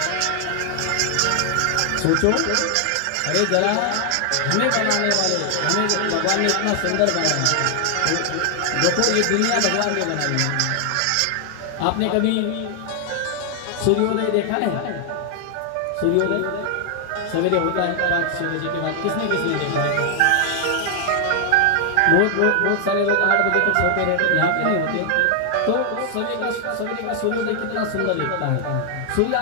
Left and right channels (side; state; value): both; different; correlation 0.00